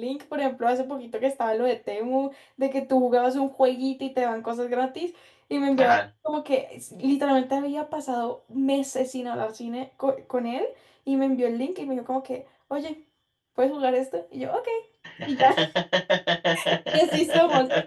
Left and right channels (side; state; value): both; identical; correlation 1.00